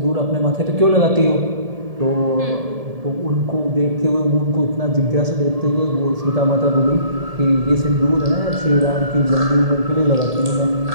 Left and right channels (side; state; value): left; late; 1.7 ms